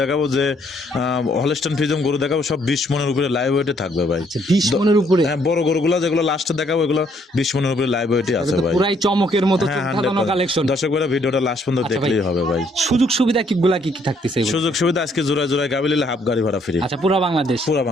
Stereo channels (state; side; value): normal; both; correlation 0.68